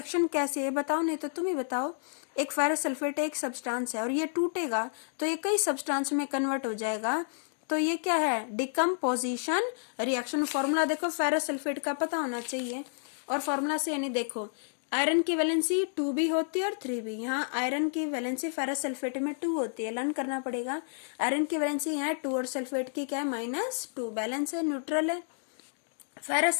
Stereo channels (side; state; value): right; silent; digital silence